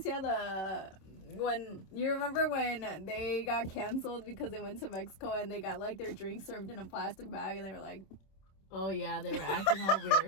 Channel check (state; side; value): late; right; 26 ms